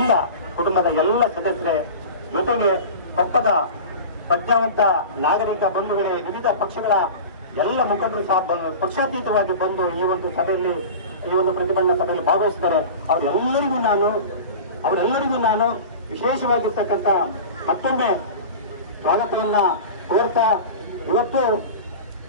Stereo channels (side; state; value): both; inverted; correlation -0.33